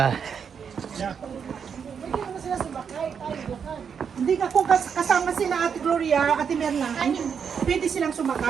Hindi ka kung kasama sila Ate Gloria, Ate Merna, pwede silang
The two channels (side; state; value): left; quieter; 6.9 dB